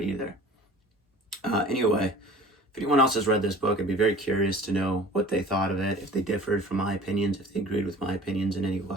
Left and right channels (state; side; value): normal; both; correlation 0.45